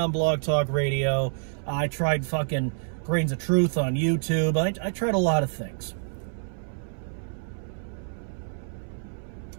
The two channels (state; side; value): silent; left; 60 dB below the other